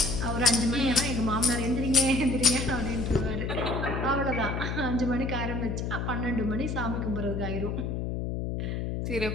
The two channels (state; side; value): noise; left; hum, 2 dB below the sound